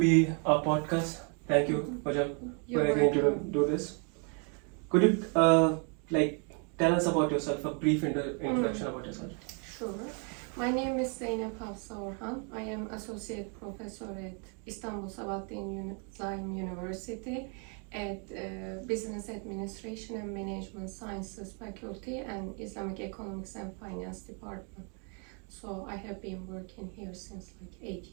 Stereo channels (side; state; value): left; quieter; 38.7 dB